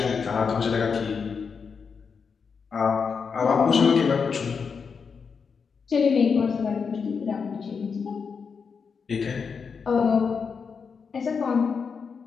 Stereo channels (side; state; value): right; quieter; 5.8 dB